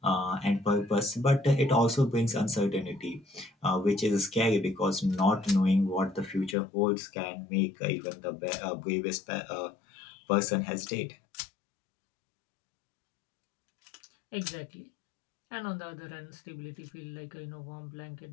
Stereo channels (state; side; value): drops out; right; at 6.6 s